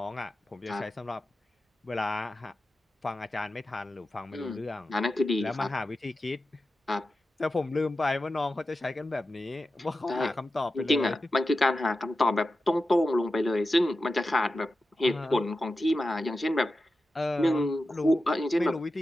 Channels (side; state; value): both; normal; correlation 0.92